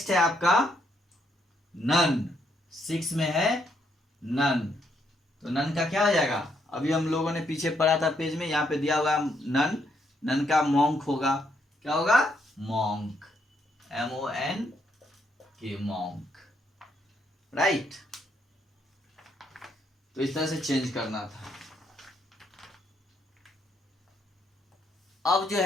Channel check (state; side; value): normal; both; correlation 0.74